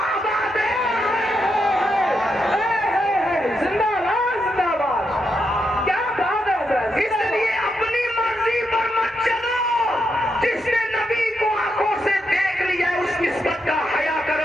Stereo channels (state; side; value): normal; both; correlation 0.82